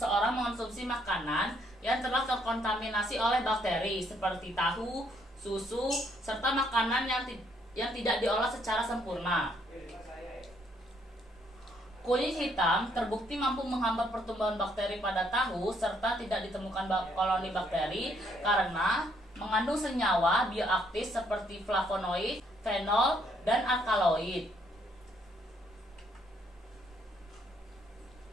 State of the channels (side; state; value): both; normal; correlation 0.69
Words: mengonsumsi makanan yang telah terkontaminasi oleh bakteri seperti tahu, susu, serta makanan yang tidak diolah secara sempurna. Kunyit hitam terbukti mampu menghambat pertumbuhan bakteri pada tahu serta tidak ditemukan koloni bakteri karena mengandung senyawa bioaktif seperti flavonoid, fenol, dan alkaloid.